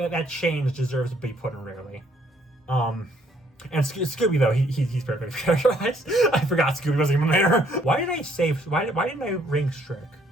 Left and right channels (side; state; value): both; normal; correlation 0.66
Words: change deserves to be put in rarely. And Scooby though, he's perfect characterized. I forgot Scooby wasn't even there. Why didn't I rank Shrek?